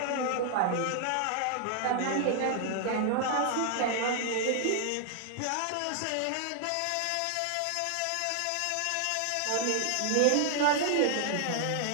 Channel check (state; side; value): different; both; correlation 0.00